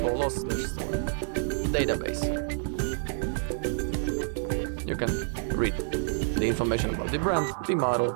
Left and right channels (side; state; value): left; silent; 59 dB below the other